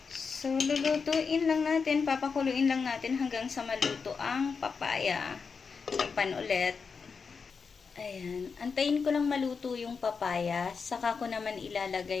So, lulutuin lang natin, papakuluin lang natin hanggang sa maluto ang papaya. Takpan ulit. Ayan. Antayin ko lang maluto yung papaya. Saka ko naman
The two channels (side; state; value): right; quieter; 5.4 dB